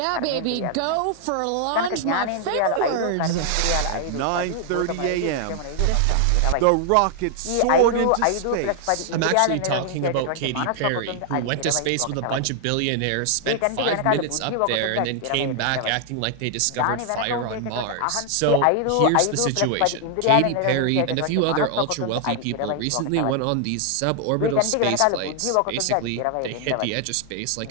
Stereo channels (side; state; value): both; different; correlation 0.00